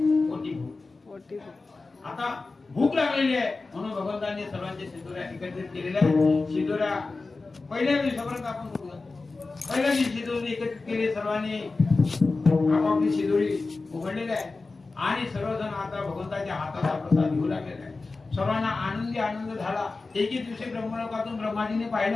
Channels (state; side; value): quieter; right; 3.7 dB